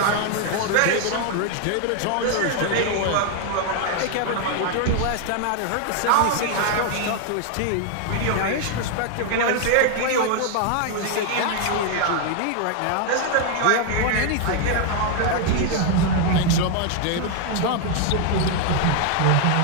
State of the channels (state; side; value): different; both; correlation 0.00